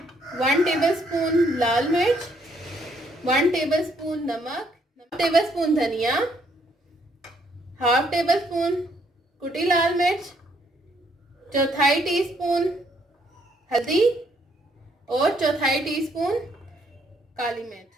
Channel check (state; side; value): normal; both; correlation 0.69